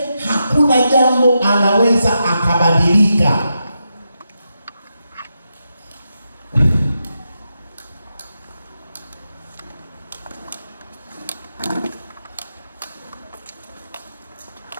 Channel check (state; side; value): inverted; both; correlation -0.86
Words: hakuna jambo anaweza akabadilika.